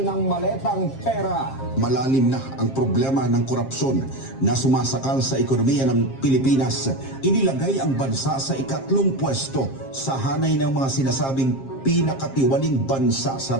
ng maletang pera. Malalim na ang problema ng korupsyon na sumasakal sa ekonomiya ng Pilipinas. Inilagay ang bansa sa ikatlong pwesto sa hanay ng mga sinasabing pinakatiwaling bansa sa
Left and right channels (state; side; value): late; right; 7.5 ms